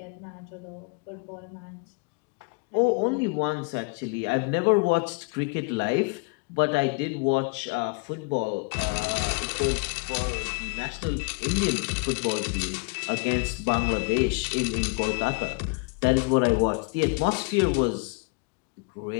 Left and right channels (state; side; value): quieter; right; 31.5 dB